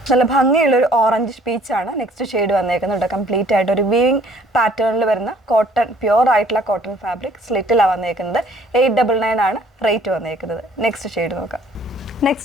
നല്ല ഭംഗിയുള്ളൊരു ഓറഞ്ച് പീച്ചാണ് നെക്സ്റ്റ് ഷെയ്ഡ് വന്നേക്കുന്നത്. കംപ്ലീറ്റ് ആയിട്ട് ഒരു വീവിങ് പാറ്റേണിൽ വരുന്ന കോട്ടൺ, പ്യുവർ ആയിട്ടുള്ള കോട്ടൺ ഫാബ്രിക് സ്ലിറ്റിലാണ് വന്നേക്കുന്നത്. 899 ആണ് റേറ്റ് വന്നേക്കുന്നത്. നെക്സ്റ്റ് ഷെയ്ഡ് നോക്കാം.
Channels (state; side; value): normal; both; correlation 0.58